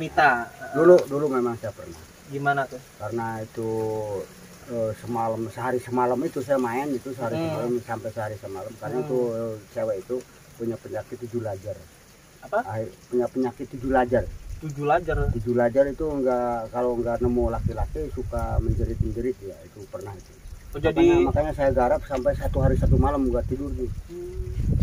Dulu memang saya pernah. Gimana tuh? Karena itu sehari semalam itu saya main itu sehari semalam sampai sehari semalam karena itu cewek itu punya penyakit 7 lajar. Apa? Punya penyakit 7 lajar. 7 lajar. 7 lajar itu kalau nggak nemu laki-laki suka menjerit ya, itu pernah itu. Oh, jadi makanya saya garap sampai 1 hari 1 malam nggak tidur tuh.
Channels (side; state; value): both; identical; correlation 1.00